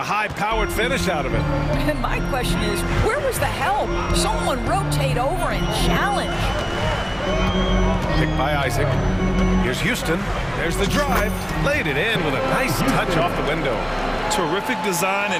high-powered finish out of it. And my question is, where was the help? Someone rotate over and challenge. Picked by Isaac. Here's Houston. There's the drive. Laid it in with a nice touch off the window. Terrific design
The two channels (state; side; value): identical; both; correlation 1.00